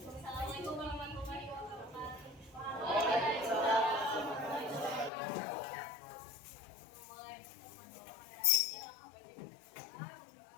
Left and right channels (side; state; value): right; drops out; at 5.1 s